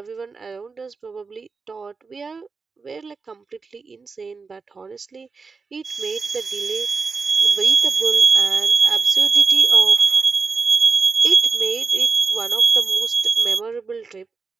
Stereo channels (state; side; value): quieter; left; 4.7 dB